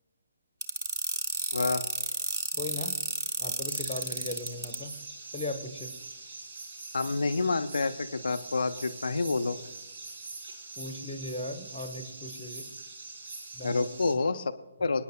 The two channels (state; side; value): inverted; both; correlation -0.77